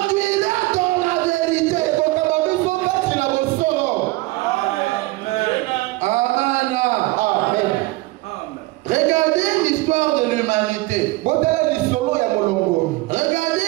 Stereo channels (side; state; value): left; quieter; 20.8 dB